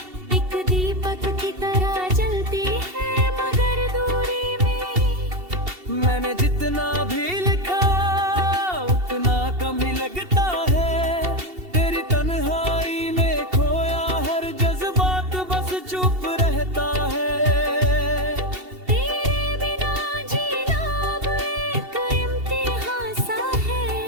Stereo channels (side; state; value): left; late; 2.7 ms